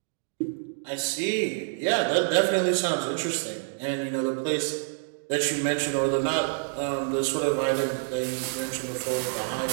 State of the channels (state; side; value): silent; left; digital silence